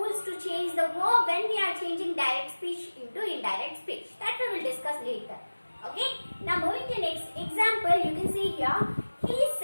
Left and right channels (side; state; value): both; inverted; correlation -1.00